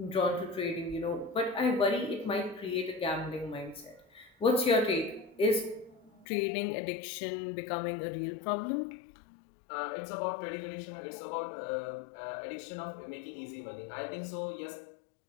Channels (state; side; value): drops out; right; at 6.2 s